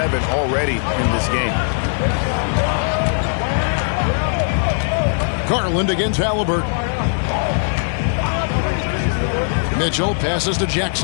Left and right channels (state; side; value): silent; right; 66 dB below the other